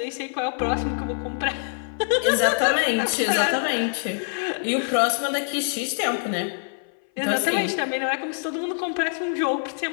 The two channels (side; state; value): right; silent; 56 dB below the other